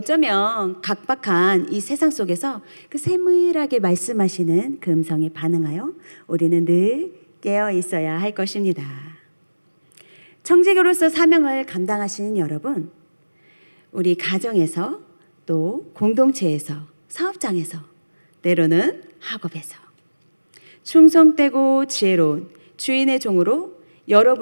각박한 이 세상 속에서 그 세밀하게 말씀하시는 그 음성에 반응하여 우리는 늘 깨어 있어야 할 것입니다. 청지기로서 사명을 감당하시는 여러분, 우리 가정에서 또 공동체에서 사업장에서 때로는 학업에서 충성되고 지혜로운 주인의 종으로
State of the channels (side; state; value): both; inverted; correlation -1.00